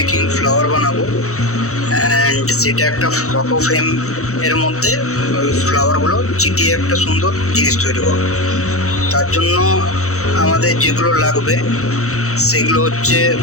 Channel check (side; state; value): right; late; 0.65 ms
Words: flower বানাবো অ্যান্ড সেটা একটা ফটো ফ্রেম এর মধ্যে ওই ফ্লাওয়ারগুলো চিটিয়ে একটা সুন্দর জিনিস তৈরি করবো। তার জন্য আমাদের যেগুলো লাগবে সেগুলো হচ্ছে